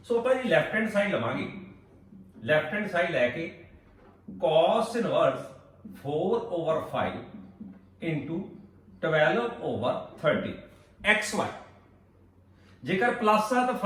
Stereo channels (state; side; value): identical; both; correlation 1.00